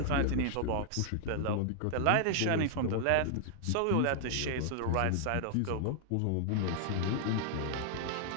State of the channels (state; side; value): different; both; correlation 0.00